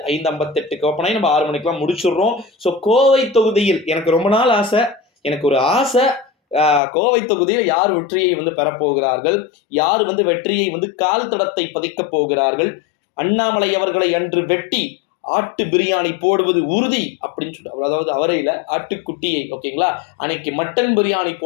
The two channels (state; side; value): drops out; right; at 6.8 s